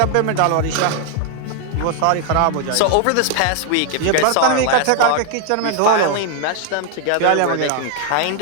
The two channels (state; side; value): different; both; correlation 0.00